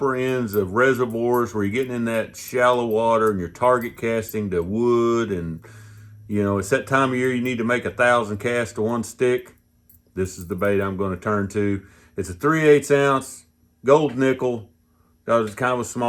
ends of reservoirs where you're getting in that shallow water and you're target casting to wood, and you know, it's that time of year you need to make 1,000 casts to one stick. This is the bait I'm going to turn to. It's a 3/8 ounce gold nickel. Got kind of a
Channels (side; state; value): both; identical; correlation 1.00